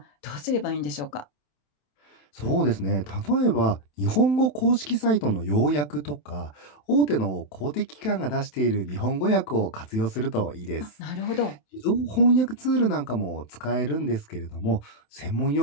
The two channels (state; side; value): late; right; 27 ms